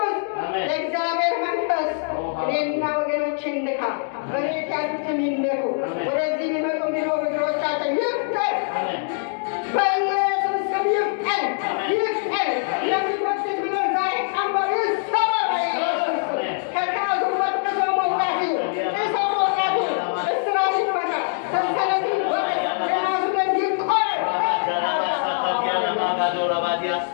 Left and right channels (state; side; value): silent; right; digital silence